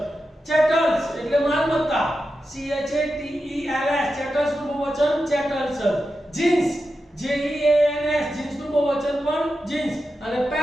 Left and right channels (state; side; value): normal; both; correlation 0.90